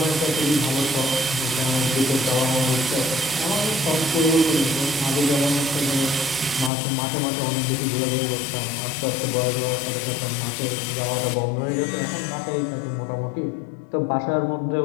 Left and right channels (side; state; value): right; drops out; at 6.7 s